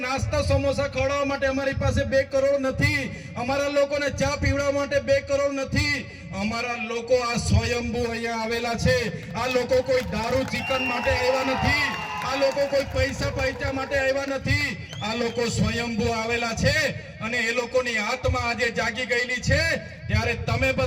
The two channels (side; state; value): both; identical; correlation 1.00